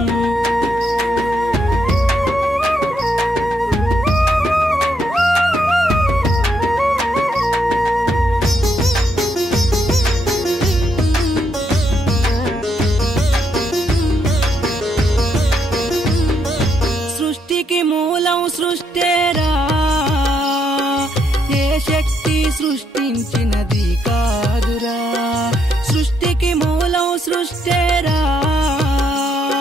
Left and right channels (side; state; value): both; normal; correlation 0.76